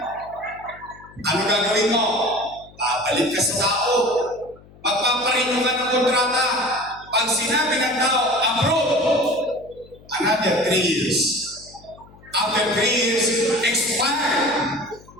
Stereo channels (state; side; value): noise; left; hum, 24 dB below the sound